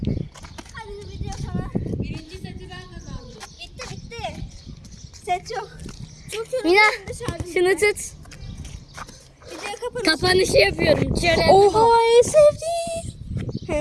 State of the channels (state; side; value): identical; both; correlation 1.00